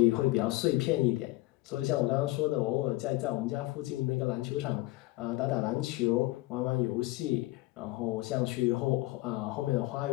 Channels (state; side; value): quieter; right; 19.3 dB